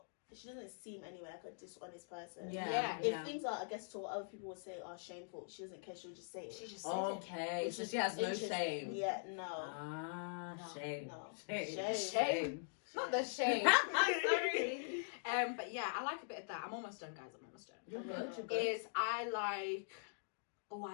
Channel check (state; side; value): silent; right; digital silence